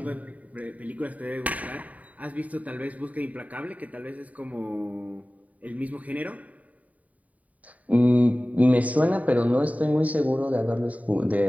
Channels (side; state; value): left; late; 0.071 ms